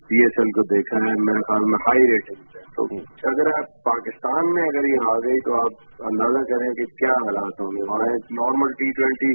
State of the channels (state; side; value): inverted; both; correlation -1.00